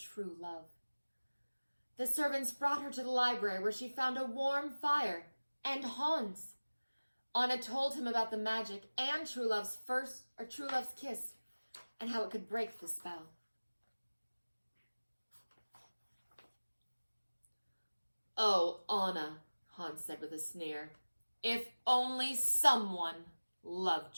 love. The servants brought her to the library where she found a warm fire and Hans. Anna told him about the magic and true love's kiss and how it could break the spell. "Oh, Anna," Hans said with a sneer, "if only someone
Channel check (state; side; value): inverted; both; correlation -1.00